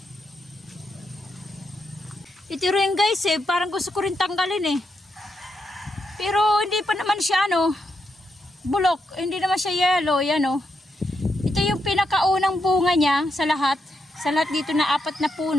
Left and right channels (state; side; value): normal; both; correlation 0.82